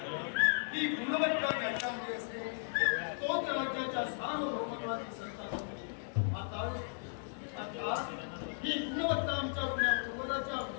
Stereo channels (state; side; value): silent; right; digital silence